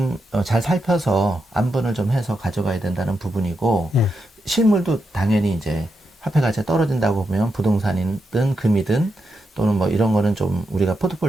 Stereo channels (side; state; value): both; normal; correlation 0.85